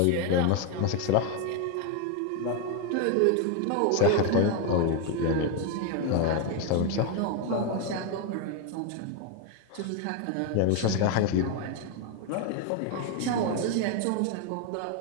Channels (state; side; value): different; both; correlation 0.01